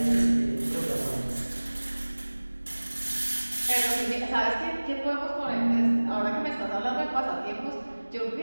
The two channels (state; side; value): inverted; both; correlation -1.00